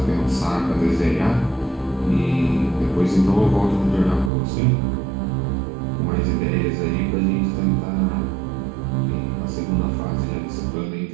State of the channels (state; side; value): drops out; left; at 4.3 s